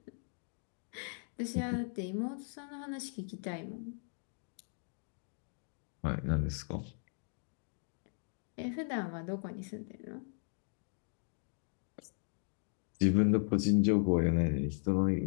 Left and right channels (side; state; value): right; silent; 53 dB below the other